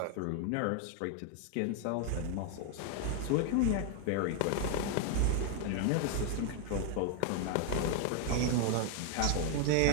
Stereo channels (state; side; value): different; both; correlation 0.00